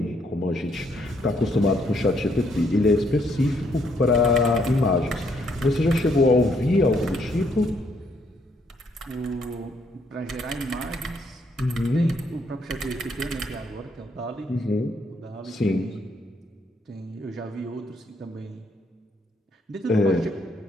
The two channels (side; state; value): both; normal; correlation 0.71